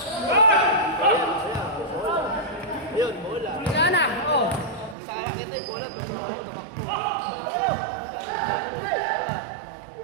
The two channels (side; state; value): left; drops out; at 5.0 s